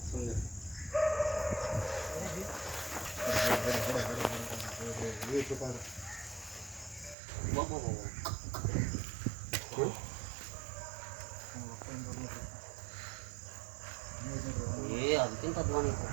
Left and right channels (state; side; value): drops out; left; at 7.2 s